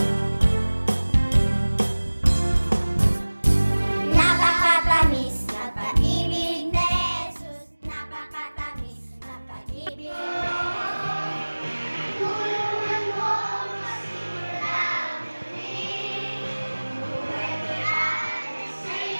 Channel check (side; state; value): both; inverted; correlation -1.00